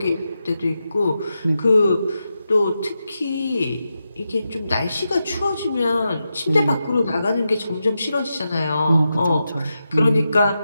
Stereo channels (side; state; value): both; inverted; correlation -0.88